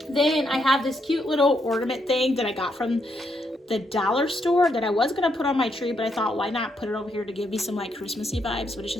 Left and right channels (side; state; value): both; normal; correlation 0.77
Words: Then I have this cute little ornament thing that I got from the dollar store that I was gonna put on my tree, but I thought, why not put it over here to give me some like Christmassy vibes, but it's